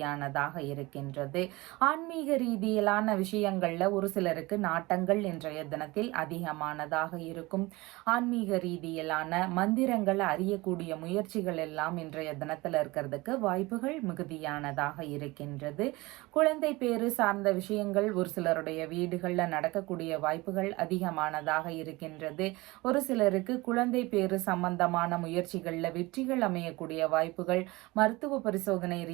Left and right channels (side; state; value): left; quieter; 22.0 dB